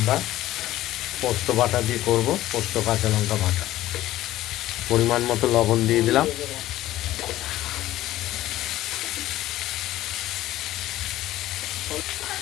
পোস্ত বাটা দিয়ে করব। পোস্ত কাঁচা লঙ্কা বাটা, পরিমাণ মতো লবণ দিয়ে দিলাম।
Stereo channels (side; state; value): right; quieter; 14.9 dB